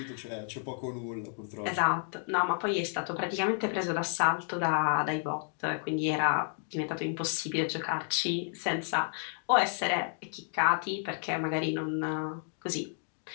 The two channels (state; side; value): silent; right; 57 dB below the other